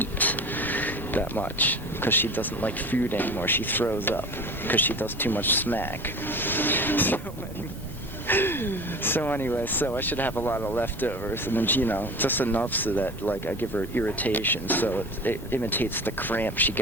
that much, because she doesn't like food anymore. She throws up because she does too much smack. So anyway, I should have a lot of leftovers, and then, just enough so that, I give her irritation, so it imitates the cramp she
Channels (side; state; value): both; normal; correlation 0.35